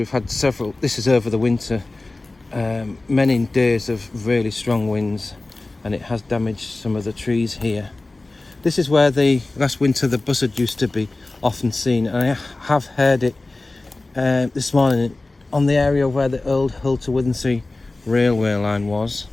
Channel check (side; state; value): right; quieter; 3.1 dB